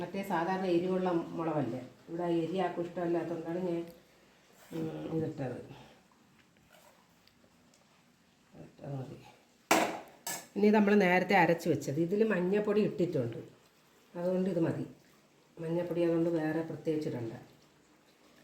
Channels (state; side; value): identical; both; correlation 1.00